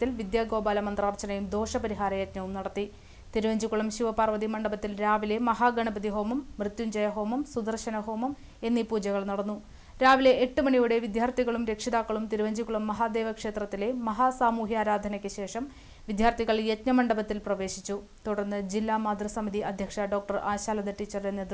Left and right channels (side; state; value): both; identical; correlation 1.00